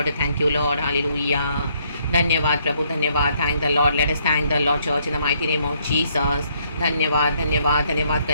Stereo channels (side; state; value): both; inverted; correlation -0.70